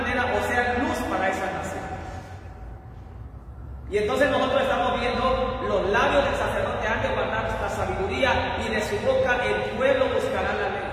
o sea, luz para esa nación. Y entonces nosotros estamos viendo: los labios del sacerdote han de guardar esta sabiduría, y de su boca el pueblo buscará la ley.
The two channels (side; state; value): both; identical; correlation 1.00